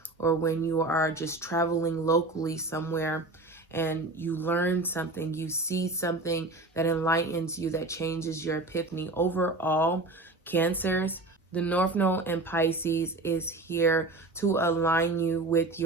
or when you are just traveling locally somewhere and you learn something, you see something that enlightens you, that changes your epiphany. Overall, Cancers, the North Node and Pisces is here to align you with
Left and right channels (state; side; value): quieter; left; 3.0 dB